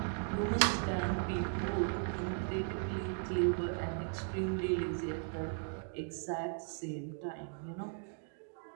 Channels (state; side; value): silent; left; 53 dB below the other